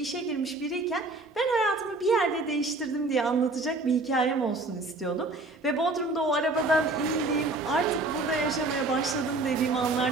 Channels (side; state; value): left; quieter; 3.1 dB